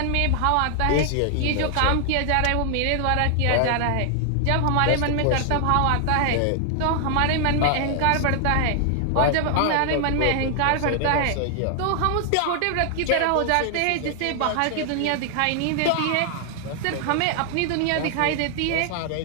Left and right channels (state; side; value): different; both; correlation 0.00